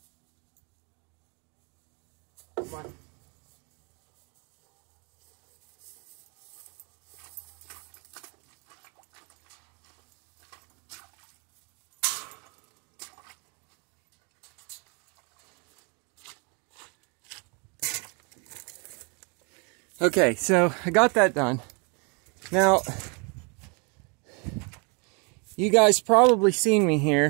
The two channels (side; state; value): left; quieter; 33.5 dB